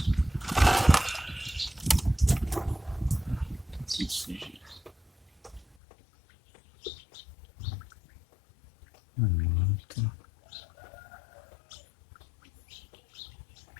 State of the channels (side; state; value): right; drops out; at 5.8 s